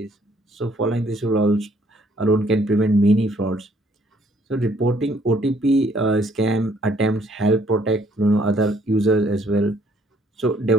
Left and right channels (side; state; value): both; normal; correlation 0.64